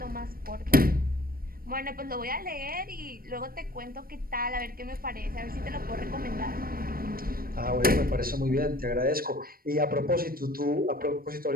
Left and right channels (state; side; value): late; left; 0.43 ms